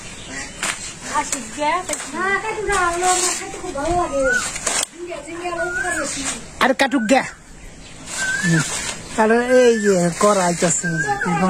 আসিগে না কাটু না হলো না খাইতে খুব ভালো লাগে জিঙ্গে জিঙ্গে উপকার বেশি আর কাটুক গে আর এই যে করা আইতাছে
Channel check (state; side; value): identical; both; correlation 1.00